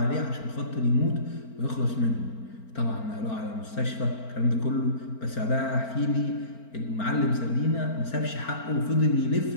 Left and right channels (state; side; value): late; right; 4.4 ms